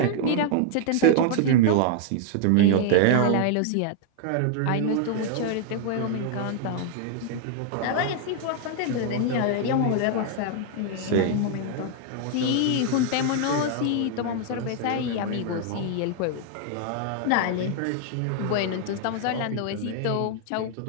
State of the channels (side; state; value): both; different; correlation 0.00